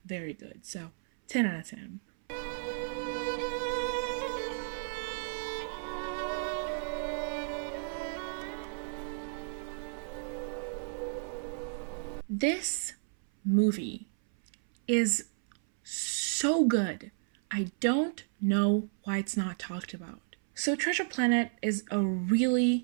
very good, so 10 out of 10. This movie is so good. I don't know why it's not talked about. So Treasure Planet is a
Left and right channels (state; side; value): silent; left; 56 dB below the other